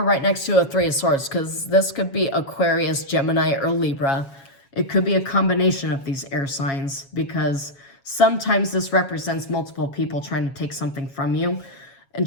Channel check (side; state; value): right; late; 7.3 ms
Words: right next to a 3 of Swords, because this could be Aquarius, Gemini, or Libra. It could be a combination of these air signs, because sometimes this represents multiple people trying to take something from you and